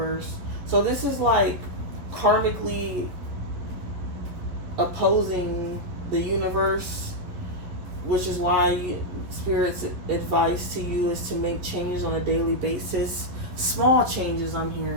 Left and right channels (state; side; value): late; left; 11 ms